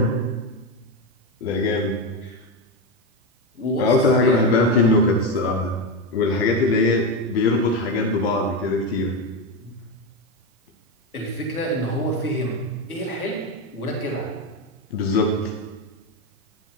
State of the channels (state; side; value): normal; both; correlation 0.12